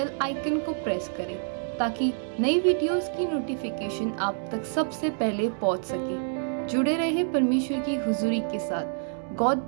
आइकन को प्रेस करें, ताकि नई वीडियोस की नोटिफिकेशन आप तक सबसे पहले पहुंच सके। जुड़े रहे परमेश्वर की हुजूरी के साथ। God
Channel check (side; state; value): left; silent; digital silence